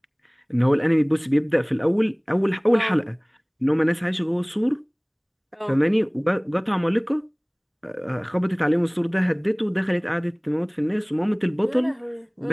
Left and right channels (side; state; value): both; identical; correlation 1.00